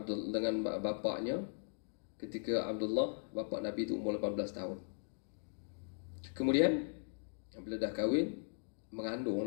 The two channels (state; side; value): silent; right; digital silence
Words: bapaknya ketika Abdullah, bapa Nabi itu umur 18 tahun. Kemudian bila dah kahwin,